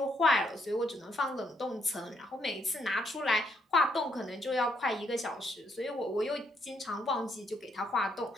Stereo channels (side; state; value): both; normal; correlation 0.74